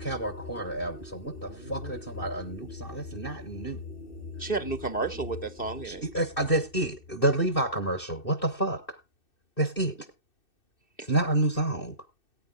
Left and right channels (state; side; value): late; right; 2.6 ms